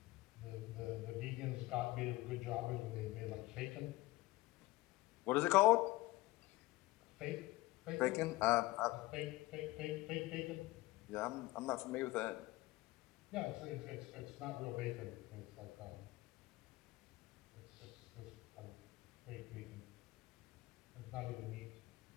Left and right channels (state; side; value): quieter; right; 19.6 dB